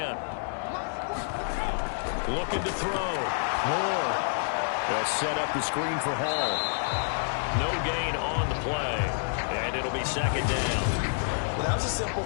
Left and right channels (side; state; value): right; silent; digital silence